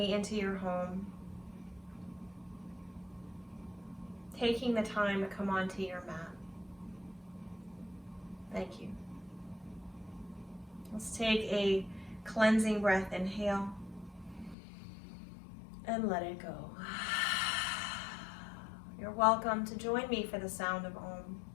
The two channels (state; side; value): drops out; right; at 14.6 s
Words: into your home. Taking the time to come onto your mat. Thank you. Let's take a cleansing breath. Inhale and let it go. You're welcome to join me for the sound of Om.